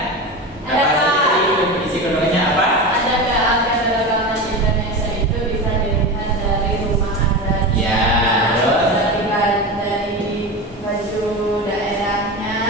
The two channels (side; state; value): both; normal; correlation 0.24